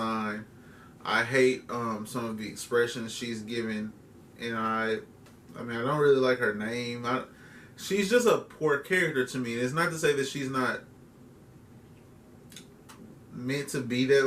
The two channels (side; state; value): both; identical; correlation 1.00